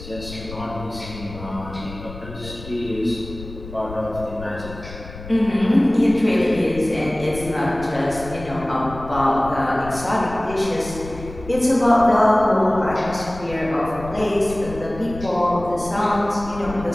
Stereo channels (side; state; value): left; noise; rumble, 13 dB below the sound